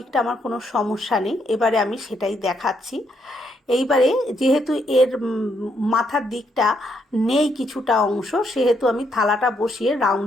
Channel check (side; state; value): both; normal; correlation 0.75